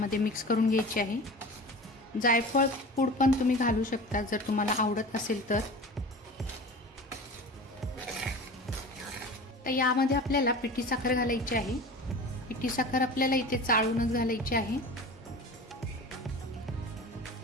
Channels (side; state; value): both; normal; correlation 0.35